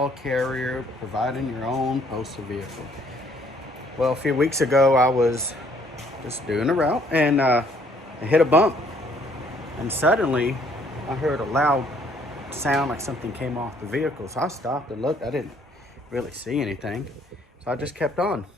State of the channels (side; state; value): both; normal; correlation 0.64